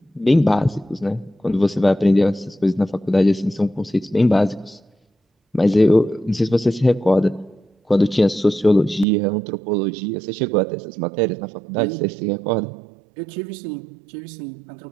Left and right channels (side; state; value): left; drops out; at 9.1 s